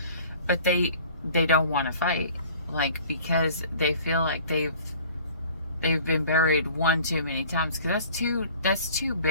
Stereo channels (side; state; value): both; inverted; correlation -0.49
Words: But they don't want to fight, like, because they feel like they've been buried one too many times. Because that's two